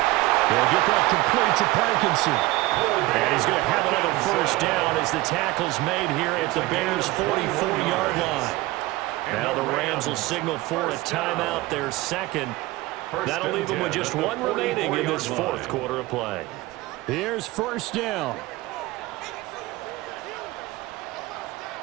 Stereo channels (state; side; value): quieter; left; 19.4 dB